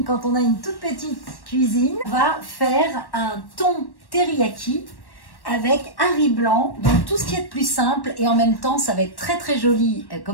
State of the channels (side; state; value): right; late; 1.1 ms